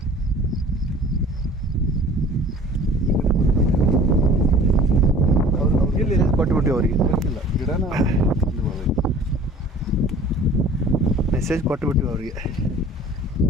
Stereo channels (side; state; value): both; normal; correlation 0.47